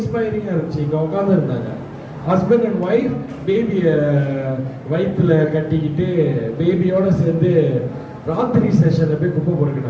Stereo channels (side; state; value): both; identical; correlation 1.00